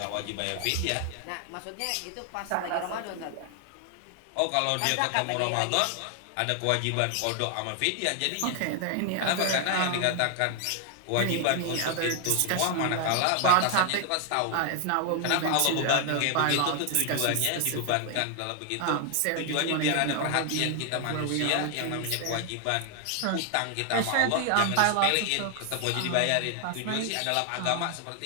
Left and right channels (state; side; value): different; both; correlation 0.00